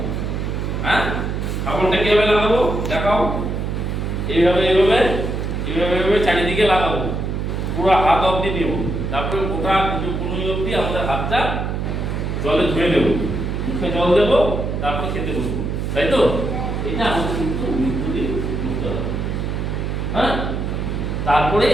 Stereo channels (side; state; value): right; noise; hum, 2 dB below the sound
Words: হ্যাঁ, সাবানটা কিভাবে লাগাবো দেখাও। এইভাবে এইভাবে এইভাবে এইভাবে চারিদিকে লাগাবো, পুরো হাত অবধি নেব, তারপরে গোটা কোনো অবধি আমাদের হাতটা জলে ধুয়ে নেব, মুখে জল দেবো, তারপরে খেতে বসবো, তাই তো? এটা আমাদের কিন্তু নিত্যদিন করতে হবে। হ্যাঁ, তারপরে